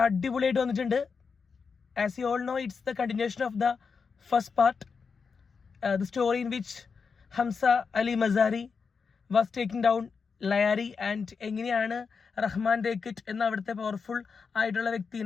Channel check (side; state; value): right; quieter; 5.4 dB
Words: അടിപൊളിയായിട്ട് വന്നിട്ടുണ്ട്. As you all know, it's the continuation of the first part, the story in which Hamza Ali Mazari was taking down Lyari and എങ്ങനെയാണ് റഹ്മാൻ ഡേക്കിറ്റ് എന്ന അവിടുത്തെ പവർഫുൾ ആയിട്ടുള്ള